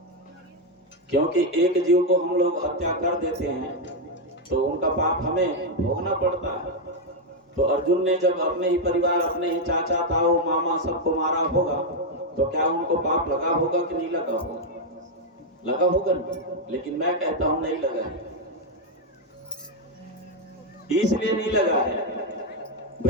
क्योंकि एक जीव को हम लोग हत्या कर देते हैं तो उनका पाप हमें भोगना पड़ता है। तो अर्जुन ने जब अपने ही परिवार, अपने ही चाचा, ताऊ, मामा सबको मारा होगा तो क्या उनको पाप लगा होगा कि नहीं लगा होगा? लगा होगा नहीं, लेकिन मैं कहता हूं नहीं लगा है। इसलिए नहीं लगा है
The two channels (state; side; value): normal; both; correlation 0.02